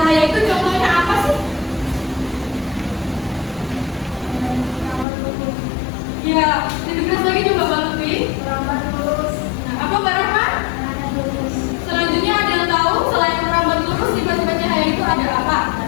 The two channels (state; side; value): drops out; right; at 5.1 s